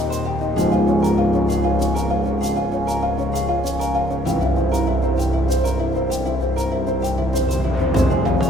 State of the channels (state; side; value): normal; both; correlation 0.65